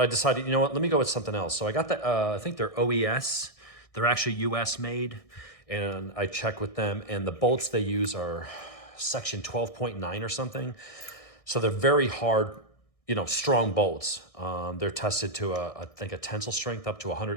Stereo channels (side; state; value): right; late; 1.6 ms